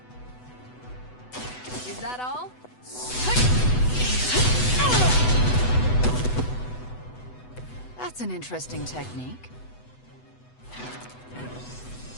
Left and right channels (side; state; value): right; late; 8.0 ms